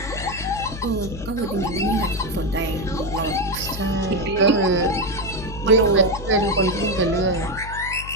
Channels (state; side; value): noise; left; hum, 11 dB below the sound